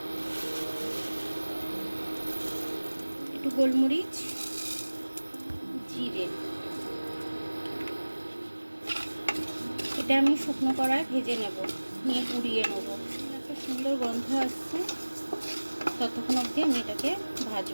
একটু গোলমরিচ, জিরে, এটা আমি শুকনো কড়ায় ভেজে নেব, নিয়ে পুড়িয়ে নেব। একটা সুন্দর গন্ধ আসছে, ততক্ষণ অবধি আমি এটাকে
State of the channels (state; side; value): inverted; both; correlation -1.00